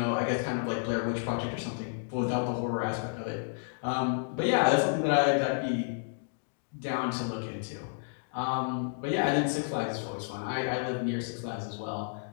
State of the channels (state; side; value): silent; right; digital silence